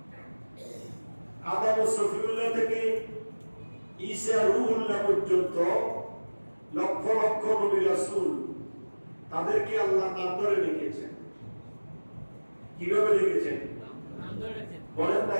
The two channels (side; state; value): both; inverted; correlation -1.00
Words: আদম ও সফিউল্লাহ থেকে ঈসা রূহুল্লাহ পর্যন্ত লক্ষ লক্ষ নবী রাসূল তাদেরকে আল্লাহ নাম ধরে রেখেছেন। কিভাবে রেখেছেন? নাম ধরে। বলেন না